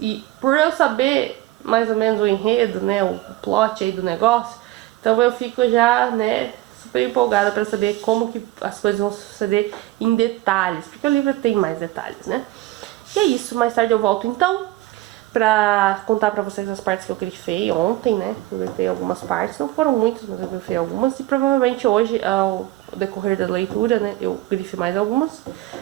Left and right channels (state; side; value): quieter; left; 16.8 dB